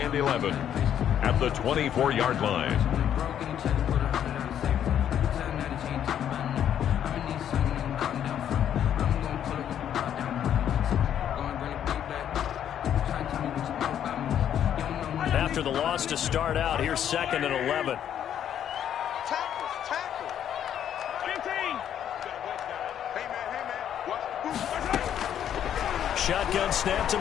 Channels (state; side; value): quieter; right; 9.8 dB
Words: and 11 at the 24-yard line. After the loss to start out, here's 2nd and 11. Shotgun snap to